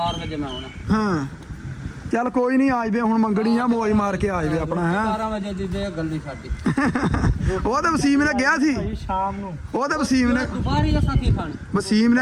ਵਜੇ ਮੈਂ ਆਉਣਾ। ਹਾਂ ਚੱਲ ਕੋਈ ਨਹੀਂ ਆ ਜਵੇ ਹੁਣ ਮੰਗਣੀ ਆ ਮੌਜ ਮਾਰ ਕੇ ਆ ਜਵੇ ਆਪਣਾ ਹੈ 12 ਵਜੇ ਦੀ ਦੇ ਗੱਲੀ ਸਾਡੀ। ਉਹ ਤੇ ਵਸੀਮ ਨੇ ਗਿਆ ਸੀ ਸ਼ਾਮ ਨੂੰ। ਉਹ ਤੇ ਵਸੀਮ ਨੇ ਦੁਪਹਿਰੀ ਅਸਾਂ ਕੀ ਖਾਣੀ? ਵਸੀਮ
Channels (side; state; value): both; identical; correlation 1.00